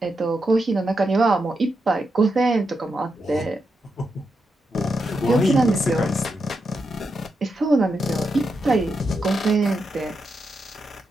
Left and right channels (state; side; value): normal; both; correlation 0.85